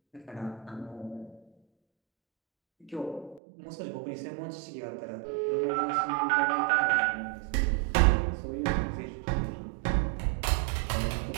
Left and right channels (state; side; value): drops out; left; at 3.4 s